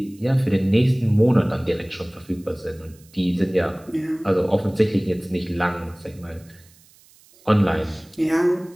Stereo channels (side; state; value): right; noise; hiss, 28 dB below the sound